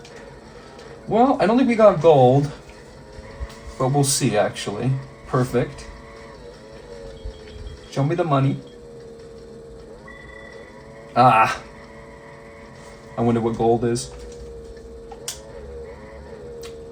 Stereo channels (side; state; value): both; identical; correlation 1.00